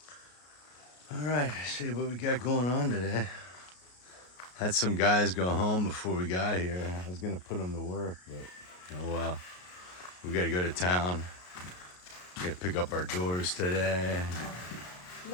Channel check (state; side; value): late; right; 33 ms